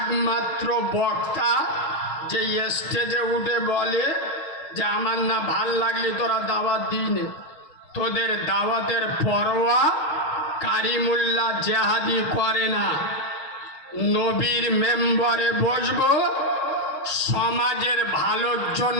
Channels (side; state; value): right; late; 6.5 ms